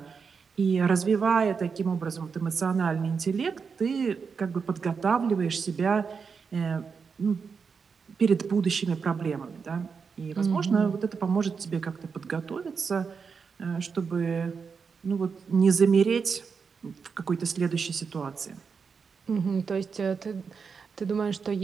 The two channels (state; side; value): quieter; left; 5.6 dB